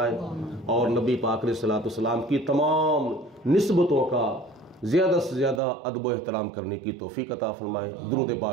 اور نبی پاک علیہ الصلوۃ والسلام کی تمام نسبتوں کا زیادہ سے زیادہ ادب و احترام کرنے کی توفیق عطا فرمائے۔ درود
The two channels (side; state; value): left; drops out; at 5.6 s